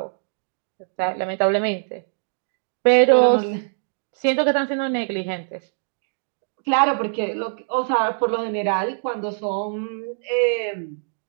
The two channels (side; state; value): left; silent; digital silence